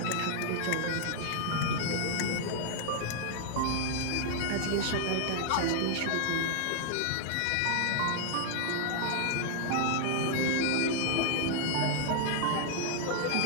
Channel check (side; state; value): both; different; correlation 0.00